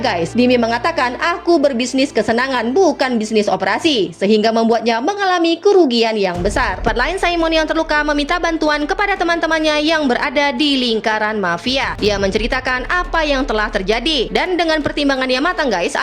guys. Dimi mengatakan, aku berbisnis kesenangan, bukan bisnis operasi, sehingga membuatnya mengalami kerugian yang besar. Tempat lain, Simon yang terluka meminta bantuan kepada teman-temannya yang berada di lingkaran mafia. Ia menceritakan apa yang telah terjadi, dan dengan pertimbangan yang matang, guys,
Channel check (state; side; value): identical; both; correlation 1.00